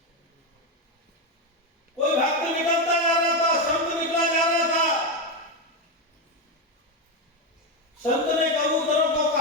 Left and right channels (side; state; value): both; normal; correlation 0.10